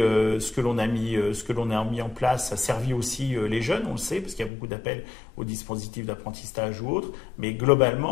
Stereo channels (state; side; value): drops out; right; at 4.5 s